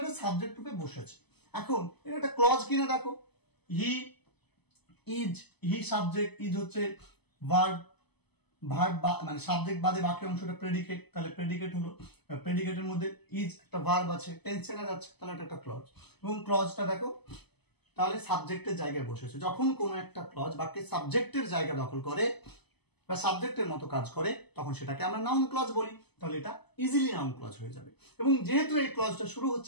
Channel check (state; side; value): late; right; 0.99 ms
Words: এটা সাবজেক্ট রূপে বসেছে। এখন এটা একটা ক্লজ কিনা দেখো, he is, he subject, is হচ্ছে ভার্ব, ভার্ব মানে সাবজেক্ট বাদে বাকি অংশটা প্রেডিকেট, তাহলে প্রেডিকেট হলো, প্রেডিকেটের মধ্যে ইজ একটা ভার্ব আছে, টেন্স চেনা যাচ্ছে, তাহলে এটা একটা ক্লজ। এবং ক্লজটা দেখো তাহলে সাবজেক্টের জায়গায় বসেছে। যখন কোনো একটা ক্লজ বাক্যের সাবজেক্টের জায়গা দখল করে বা সাবজেক্টের মতো কাজ করে তখন সেটাকে আমরা নাউন ক্লজ বলি। তাহলে এটা ইজিলি নাউন ক্লজ হয়ে যাবে। এবং যেহেতু এই ক্লজটা শুরু